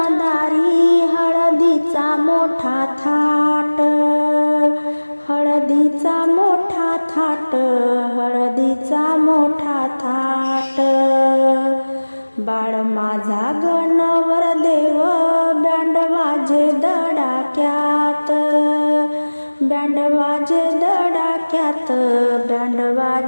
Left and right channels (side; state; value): both; inverted; correlation -1.00